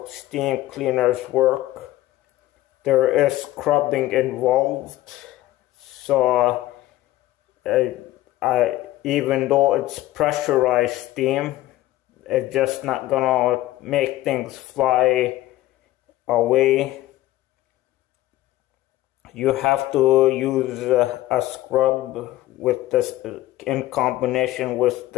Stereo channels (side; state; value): right; quieter; 15.8 dB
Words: steam cleaners work. There is scrubbing involved, so even though it's pressurized steam, it's just not gonna make things fly away. You have to use a scrub with this in combination with